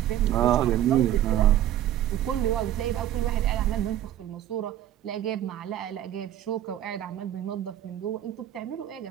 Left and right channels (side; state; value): left; quieter; 12.1 dB